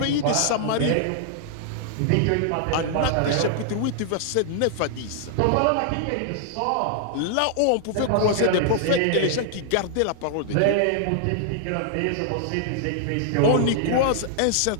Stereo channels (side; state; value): both; different; correlation -0.01